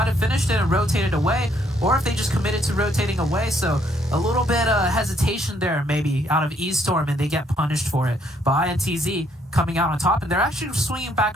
have finished it and rotated away, or if they just committed to rotating away. So a little bit of hesitation there maybe out of E-Storm, and they get punished for it. But INTZ coming out on top, and they're actually swinging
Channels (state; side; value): normal; both; correlation 0.69